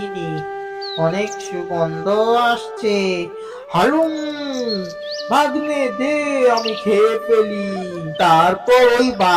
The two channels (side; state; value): both; identical; correlation 1.00